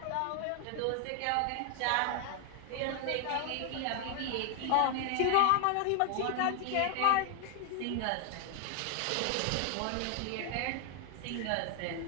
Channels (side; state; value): both; different; correlation 0.00